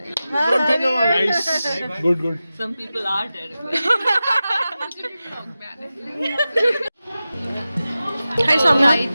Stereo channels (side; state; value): both; inverted; correlation -0.94